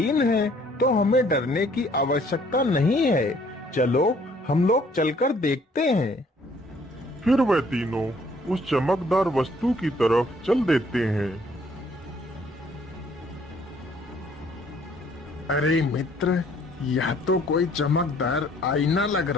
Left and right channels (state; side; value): normal; both; correlation 0.61